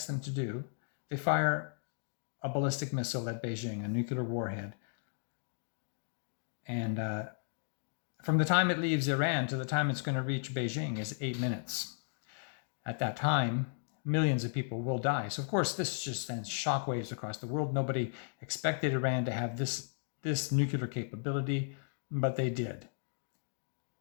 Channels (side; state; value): right; silent; digital silence